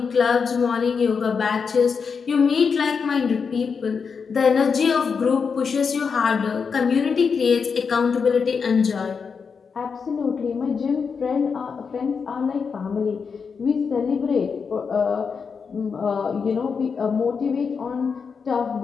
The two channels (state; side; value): quieter; right; 5.7 dB